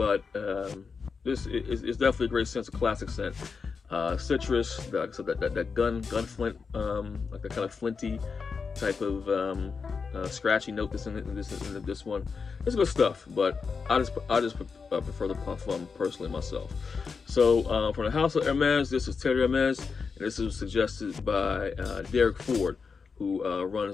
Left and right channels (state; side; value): quieter; right; 5.2 dB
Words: this is definitely a great scent. It's a classic scent. Citrus, so that gun flint, like that kind of flinty type of scratchy note that's in this one. It's good stuff, but I just prefer the Parfum personally myself. So from the house of Hermes, this is Terre Hermes, and this was suggested by Derek Ford, who